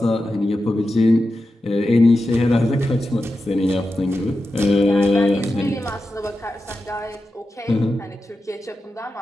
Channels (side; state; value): both; normal; correlation 0.91